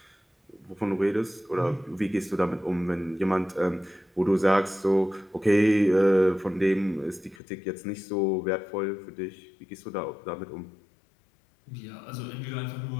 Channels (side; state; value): right; drops out; at 7.4 s